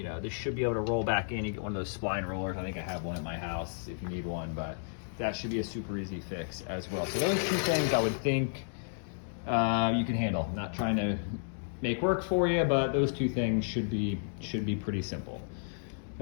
know, this should be able to roll back in. You get one of those spline rollers. I think I have one at my house if you need one, but that should be a super easy fix as well. So those two things I would think you can handle. I'm not trying to make work for you, but those two things should be pretty simple.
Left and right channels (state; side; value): silent; right; 56 dB below the other